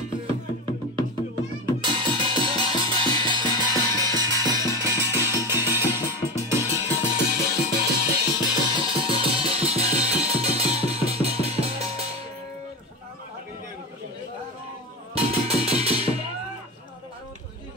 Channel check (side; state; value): both; normal; correlation 0.22